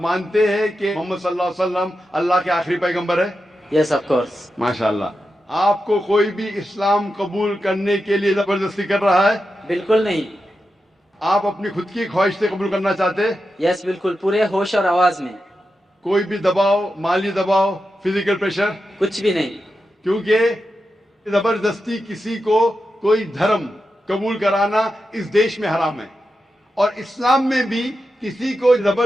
मानते हैं कि मोहम्मद सल्लल्लाहु अलैहि वसल्लम अल्लाह के आखिरी पैगंबर है? Yes of course. माशाअल्लाह। आपको कोई भी इस्लाम कबूल करने के लिए जबरदस्ती कर रहा है? बिल्कुल नहीं। आप अपनी खुद की ख्वाहिश से कबूल करना चाहते हैं? यस बिल्कुल, पूरे होश और आवाज में। कोई भी दबाव, माली दबाव, फिजिकल प्रेशर? कुछ भी नहीं। क्योंकि जबरदस्ती किसी को कोई धर्म कबूल कराना इस देश में हराम है और इस्लाम में भी किसी को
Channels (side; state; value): both; normal; correlation 0.89